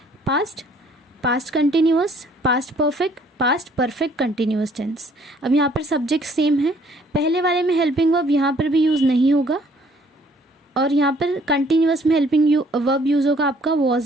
past, past continuous, past perfect, past perfect continuous tense. अब यहाँ पर सब्जेक्ट सेम है, पहले वाले में हेल्पिंग वर्ब यहाँ पर भी यूज़ नहीं होगा, और यहाँ पर कंटिन्यूअस में हेल्पिंग वर्ब यूज़ होगा आपका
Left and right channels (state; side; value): normal; both; correlation 0.61